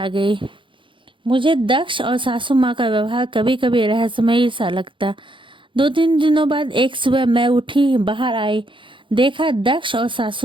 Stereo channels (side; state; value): left; late; 0.24 ms